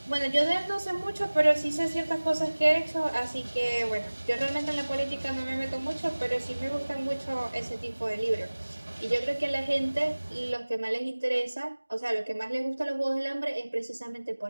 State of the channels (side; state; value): both; inverted; correlation -1.00